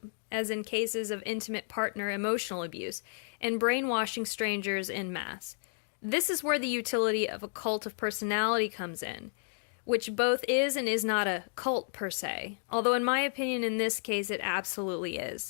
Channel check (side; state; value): right; silent; digital silence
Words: as in cases of intimate partner emotional abuse, and brainwashing strangers en masse. This is where the utility of a cult of personality comes in, which both is and is not a cult per se, although in my opinion in this case it absolutely